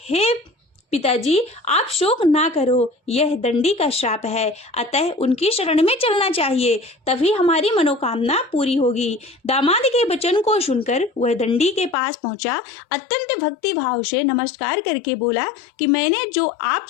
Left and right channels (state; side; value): drops out; right; at 12.0 s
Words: हे पिताजी, आप शोक ना करो, यह दंडी का श्राप है, अतः उनकी शरण में चलना चाहिए, तभी हमारी मनोकामना पूरी होगी। दामाद के वचन को सुनकर वह दंडी के पास पहुंचा। अत्यंत भक्ति भाव से नमस्कार करके बोला कि मैंने जो